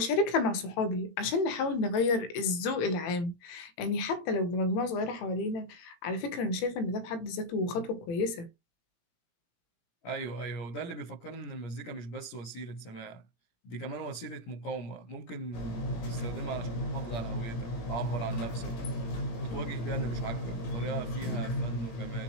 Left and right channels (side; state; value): right; late; 17 ms